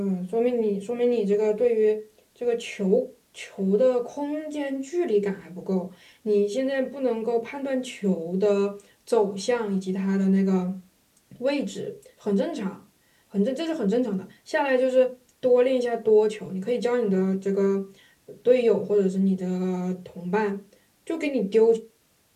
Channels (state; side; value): identical; both; correlation 1.00